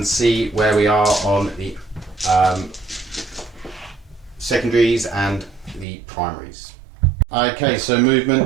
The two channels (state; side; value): drops out; left; at 5.9 s